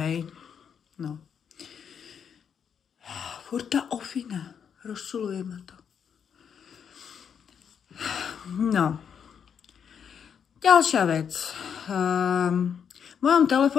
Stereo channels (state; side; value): quieter; right; 7.5 dB